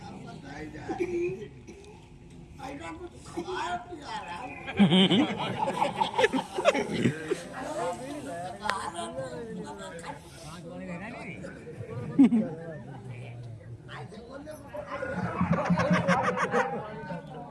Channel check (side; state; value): both; identical; correlation 1.00